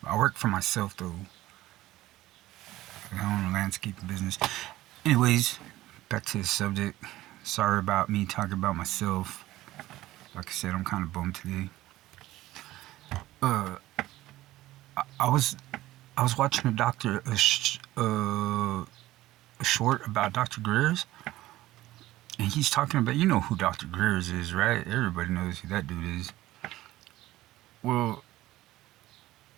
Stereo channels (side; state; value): left; quieter; 16.3 dB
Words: I work for myself, though. I own a landscaping business. Anyways, back to the subject. Sorry about me talking about myself. Like I said, I'm kind of bummed today. Uh, I was watching a short about Dr. Greer's, and he's talking about, you know who Dr. Greer's is, right? Everybody knows who that dude is. Well,